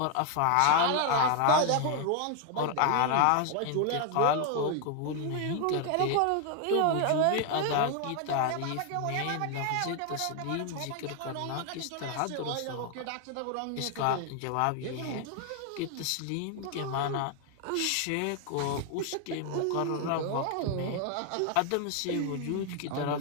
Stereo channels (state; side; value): different; both; correlation 0.00